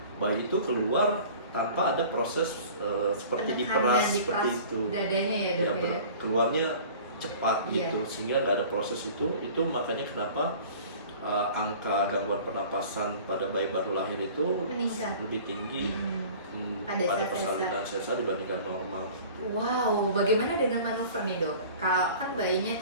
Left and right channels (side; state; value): both; inverted; correlation -0.44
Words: bayi itu keluar tanpa ada proses seperti diperas seperti itu. Dadanya ya dok ya. Keluarnya cepat gitu, sehingga nggak ada proses itu. Itu makanya kenapa angka gangguan pernapasan pada bayi baru lahir itu meningkat, lebih tinggi pada persalinan sesar dibandingkan normal. Wow, bagaimana dengan manuver nih dok? Kalau kan bayinya